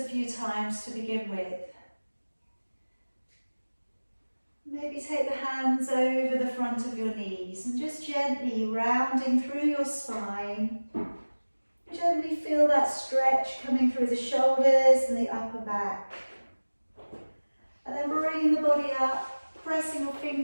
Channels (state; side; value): inverted; both; correlation -1.00